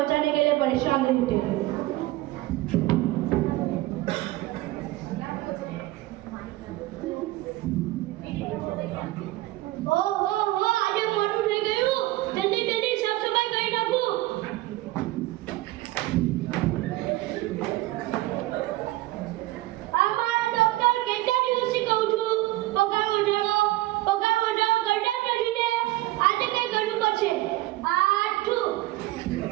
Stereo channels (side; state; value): left; quieter; 17.8 dB